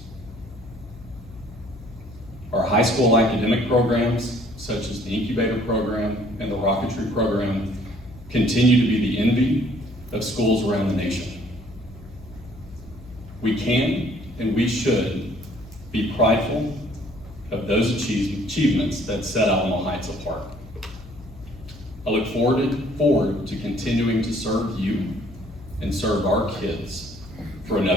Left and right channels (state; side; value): noise; left; hum, 18 dB below the sound